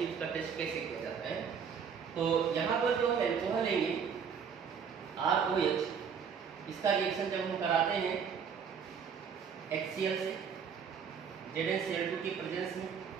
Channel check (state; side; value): quieter; left; 6.9 dB